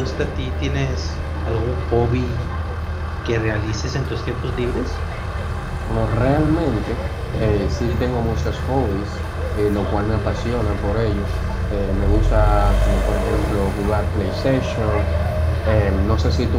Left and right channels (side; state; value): both; identical; correlation 1.00